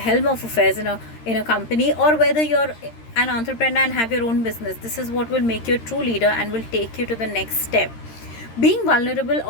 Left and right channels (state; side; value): late; right; 13 ms